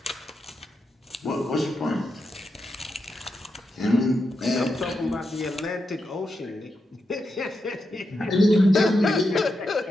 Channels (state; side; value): normal; both; correlation 0.86